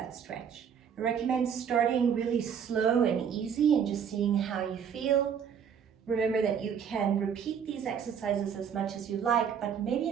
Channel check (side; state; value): left; quieter; 7.7 dB